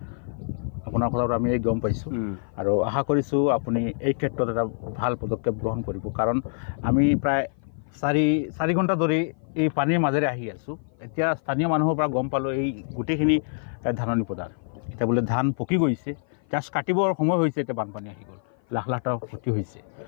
আপোনাৰ কথাটো আমি গম পাইছোঁ আৰু আশা কৰিছোঁ আপুনি এই ক্ষেত্ৰত এটা ভাল পদক্ষেপ গ্ৰহণ কৰিব। কাৰণ আমি প্ৰায় 4 ঘণ্টা ধৰি এই পানীৰ মাজেৰে আহি আছোঁ। এতিয়া স্থানীয় মানুহৰ পৰা গম পালোঁ এই গোটেইখিনি ধাননি পথাৰ, এতিয়া বোলে ধান পকি গৈছে, জাষ্ট কাটিবৰ সময় হৈছে, এতিয়া বানপানী আহি গ'ল, লাখ লাখ টকা ক্ষতি হৈছে।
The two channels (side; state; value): right; silent; 55 dB below the other